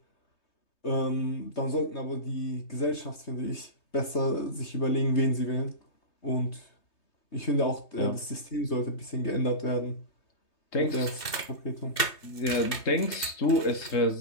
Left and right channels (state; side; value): late; right; 3.2 ms